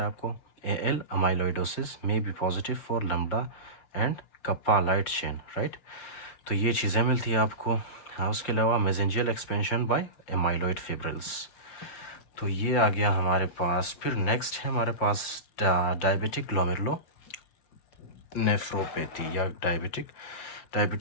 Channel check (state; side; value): late; right; 5.7 ms